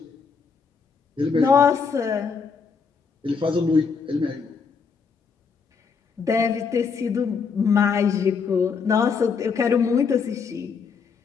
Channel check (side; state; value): right; quieter; 5.6 dB